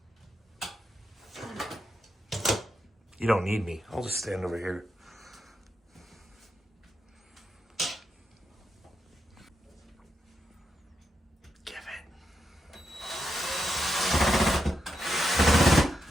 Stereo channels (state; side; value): normal; both; correlation 0.85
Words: You don't need me. I'll just stand over here. Give it.